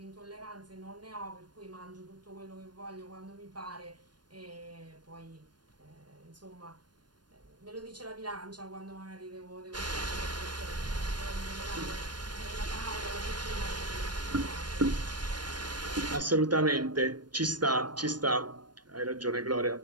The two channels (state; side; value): late; left; 0.70 ms